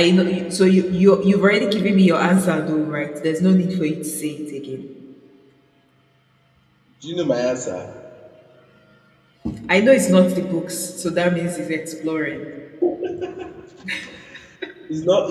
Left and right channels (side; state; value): both; identical; correlation 1.00